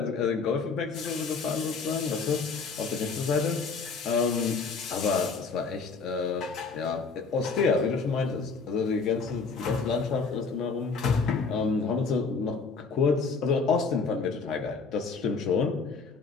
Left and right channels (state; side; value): quieter; right; 4.7 dB